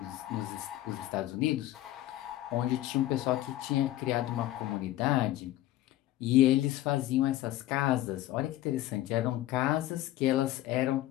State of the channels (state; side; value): quieter; right; 14.7 dB